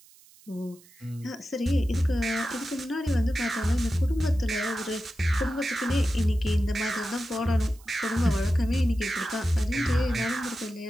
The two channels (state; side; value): noise; right; hiss, 26 dB below the sound